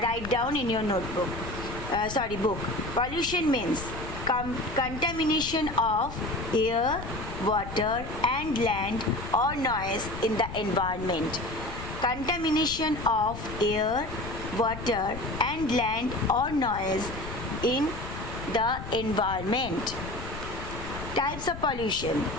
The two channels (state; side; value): noise; left; rumble, 10 dB below the sound